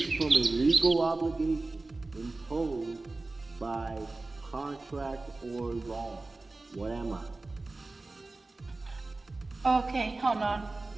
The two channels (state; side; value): quieter; left; 3.3 dB